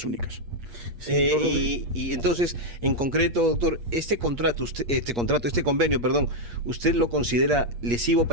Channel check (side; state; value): left; late; 8.5 ms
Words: únicas. Y entonces, en concreto, doctor, este convenio, ¿usted lo considera lesivo